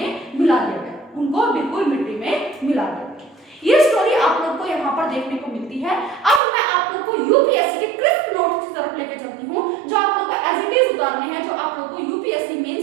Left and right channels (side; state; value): left; drops out; at 6.4 s